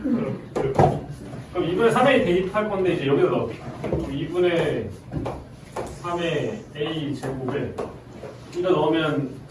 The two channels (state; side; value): identical; both; correlation 1.00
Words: 그럼 2분의 3a 대입할 건데 이제 여기다 넣어. 2분의 3의 a 제곱에 이거 넣으면